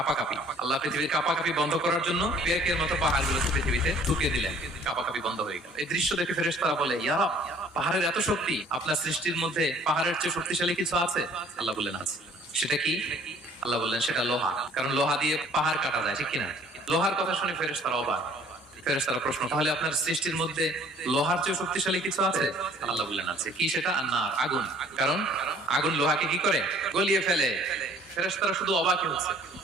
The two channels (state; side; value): normal; both; correlation 0.55